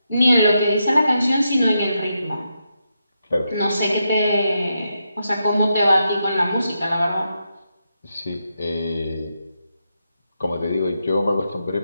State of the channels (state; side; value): inverted; both; correlation -0.84